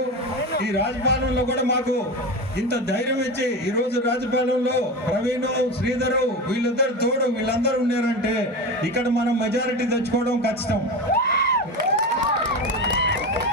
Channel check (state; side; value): normal; both; correlation 0.24